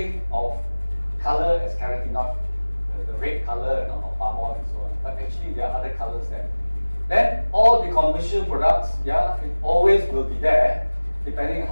of color as carotenoid, the red color of palm oil and so on. But actually, there are other colors there. Then all the commercial products, yeah, it always will be there, depending on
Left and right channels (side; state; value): both; inverted; correlation -1.00